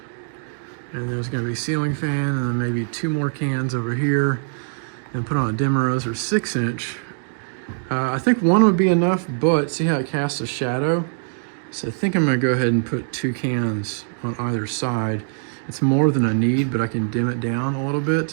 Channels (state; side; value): silent; left; digital silence